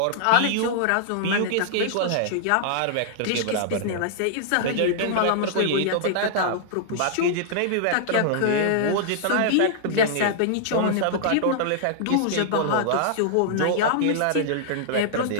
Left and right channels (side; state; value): both; different; correlation -0.01